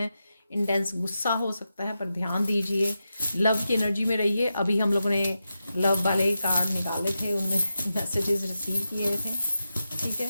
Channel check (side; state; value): both; inverted; correlation -0.89